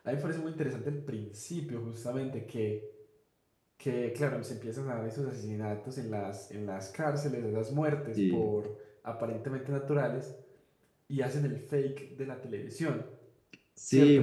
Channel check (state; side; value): identical; both; correlation 1.00